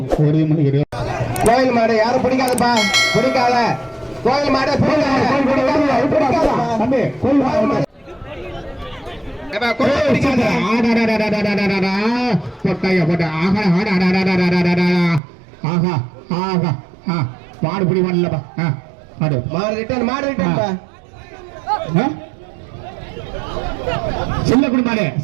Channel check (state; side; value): drops out; left; at 15.2 s